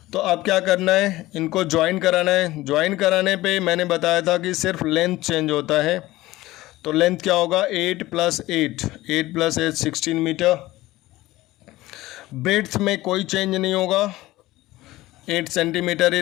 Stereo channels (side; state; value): right; quieter; 17.7 dB